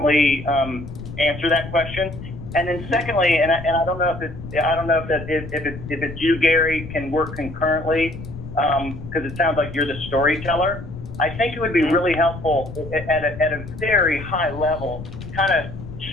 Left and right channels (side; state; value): left; noise; rumble, 11 dB below the sound